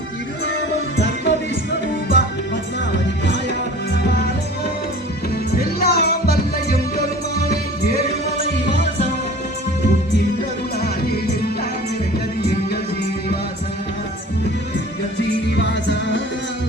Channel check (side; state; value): both; normal; correlation 0.43